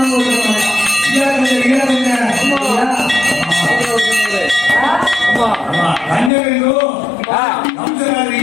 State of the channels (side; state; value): right; drops out; at 6.3 s